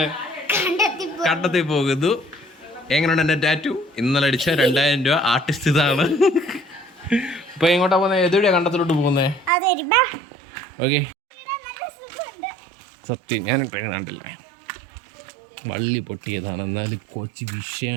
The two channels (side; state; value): left; drops out; at 9.5 s